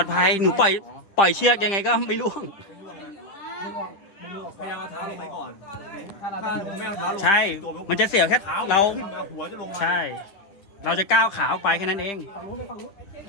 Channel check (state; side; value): late; right; 10 ms